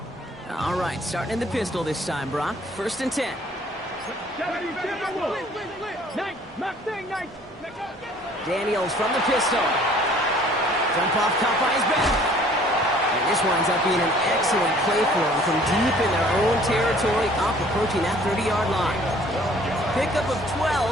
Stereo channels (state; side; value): normal; both; correlation 0.55